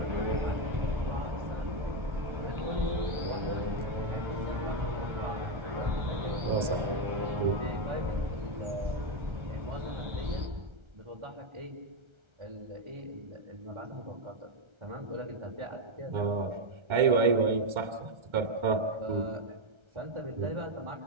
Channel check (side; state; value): left; late; 1.3 ms